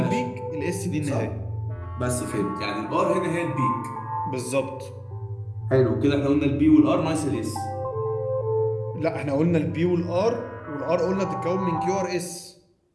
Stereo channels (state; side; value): identical; both; correlation 1.00